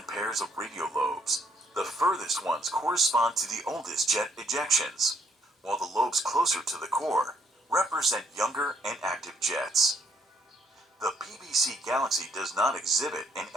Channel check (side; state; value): both; normal; correlation 0.68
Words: pairs of radio lobes, the furthest ones correspond to the oldest jet ejections, while the lobes closer to the core represent younger and active jets. The PBC galaxy does not exhibit an